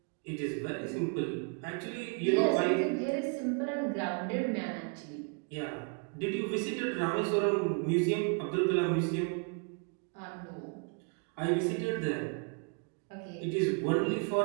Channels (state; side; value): quieter; left; 37.9 dB